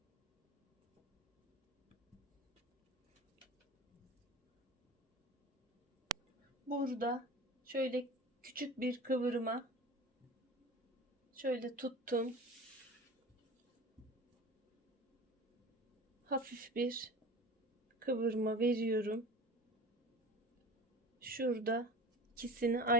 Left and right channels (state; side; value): normal; both; correlation 0.36